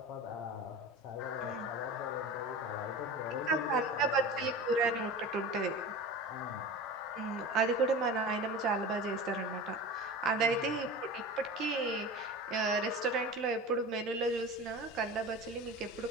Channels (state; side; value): normal; both; correlation 0.33